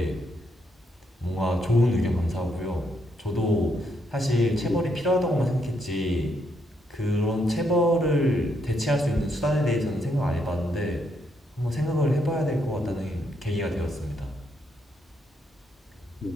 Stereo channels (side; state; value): both; normal; correlation 0.76